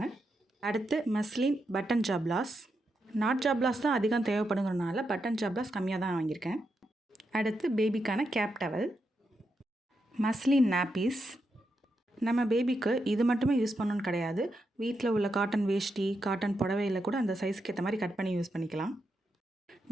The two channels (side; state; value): both; normal; correlation 0.84